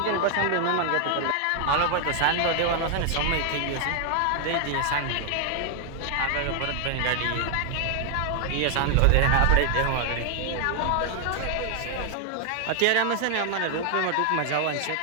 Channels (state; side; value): different; both; correlation 0.00